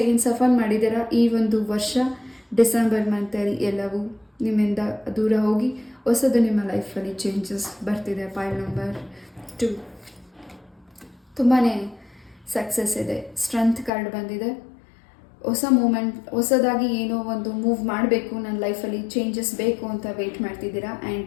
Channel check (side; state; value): right; drops out; at 13.9 s